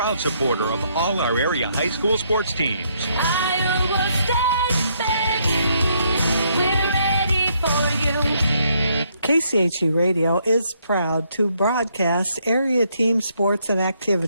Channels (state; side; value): inverted; both; correlation -0.72